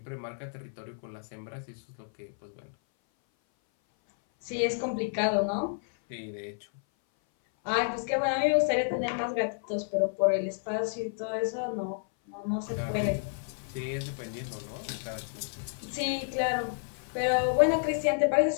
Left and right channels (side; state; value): right; silent; 57 dB below the other